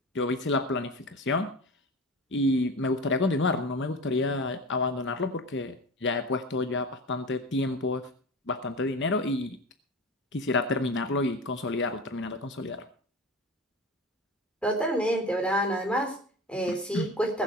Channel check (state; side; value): normal; both; correlation 0.30